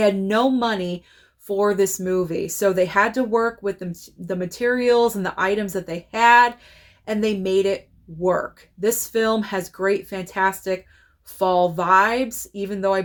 no money for this movie. So they had to work with the materials and the items that they had, and they made it work. This film has great, fantastic fall vibes, even though I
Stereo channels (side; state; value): both; identical; correlation 1.00